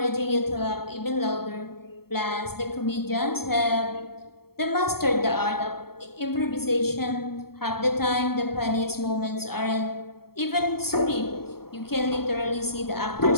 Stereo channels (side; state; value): right; late; 0.95 ms